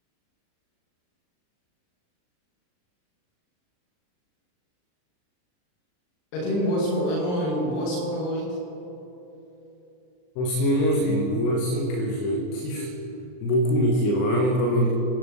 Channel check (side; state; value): right; late; 39 ms